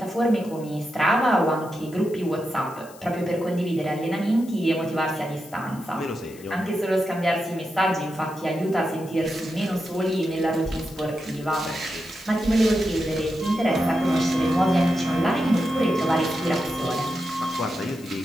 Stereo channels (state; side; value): noise; left; hiss, 22 dB below the sound